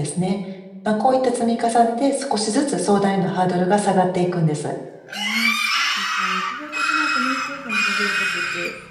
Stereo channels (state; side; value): identical; both; correlation 1.00